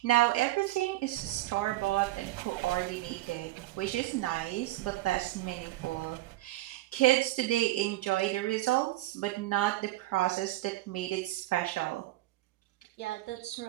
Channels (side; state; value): left; quieter; 16.8 dB